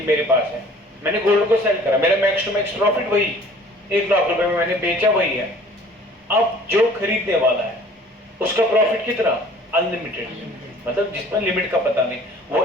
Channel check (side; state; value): both; normal; correlation 0.51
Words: मेरे पास है, मैंने गोल्ड को सेल करा, मेरा मैक्स टू मैक्स प्रॉफिट वही 1 लाख रुपए में मैंने बेचा वही है। अब जो खरीदने वाला है उसका प्रॉफिट कितना, अनलिमिटेड, मतलब जिसमें लिमिट का पता नहीं, वो